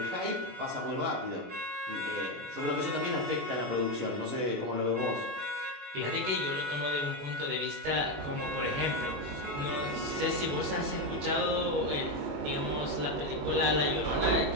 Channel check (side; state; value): left; late; 21 ms